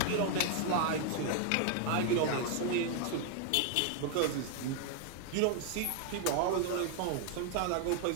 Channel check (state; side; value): different; both; correlation 0.00